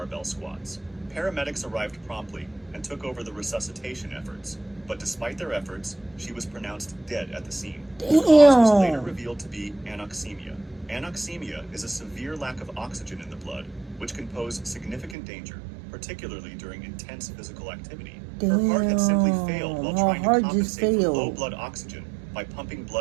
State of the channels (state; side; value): drops out; left; at 15.2 s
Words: squats. Paramedics arrived promptly and took over the resuscitation efforts, but despite their efforts, she was pronounced dead at the scene. The cause was later revealed to be anoxemia. Anoxemia is a severe lack of oxygen in the blood, which can pose significant danger, particularly during intense physical activity. Her heart had simply failed while trying to compensate for low blood oxygen by pumping